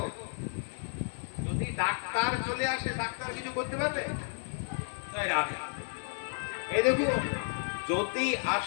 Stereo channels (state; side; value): silent; right; digital silence